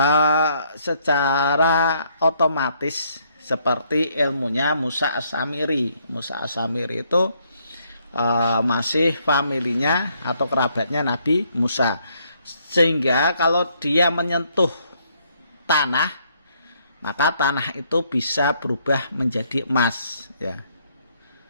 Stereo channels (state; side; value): inverted; both; correlation -0.70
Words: secara otomatis, seperti ilmunya Musa As-Samiri. Musa As-Samiri itu masih familinya atau kerabatnya Nabi Musa. Sehingga kalau dia menyentuh tanah, maka tanah itu bisa berubah menjadi emas, ya.